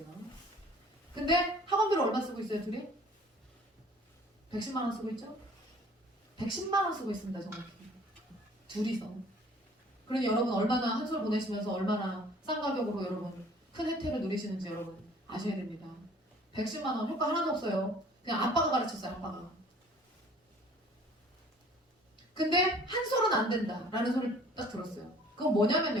근데 학원비를 얼마 쓰고 있어요 둘이? 110만 원 쓰고 있죠? 110만 원 쓰고 있습니다 정확히. 둘이서. 그러니 여러분 얼마나 한 솔 보내시면서 얼마나 싼 가격으로 여러분 큰 혜택을 누리시는지 여러분 아셔야 됩니다. 110만 원 효과 하나도 없어요. 그냥 아빠가 가르쳤어요 아빠가. 근데 한 솔은 안 된다 라는 소리를 딱 들었어요. 그건 뭐냐면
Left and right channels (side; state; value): both; normal; correlation 0.52